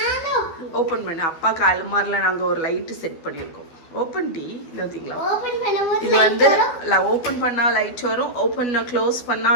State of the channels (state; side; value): late; right; 12 ms